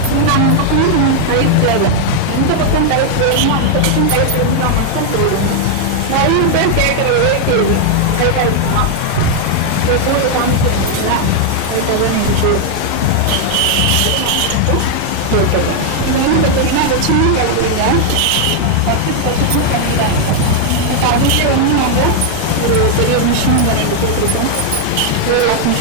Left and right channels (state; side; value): different; both; correlation 0.00